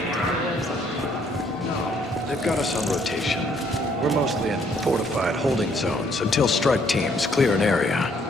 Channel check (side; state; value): both; normal; correlation 0.66